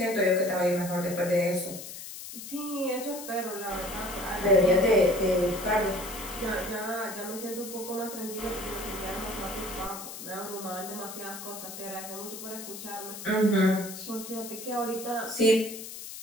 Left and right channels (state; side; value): noise; left; hiss, 10 dB below the sound